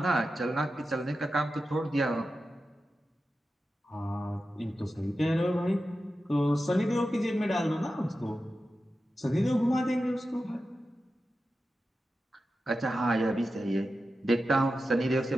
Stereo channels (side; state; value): both; normal; correlation 0.92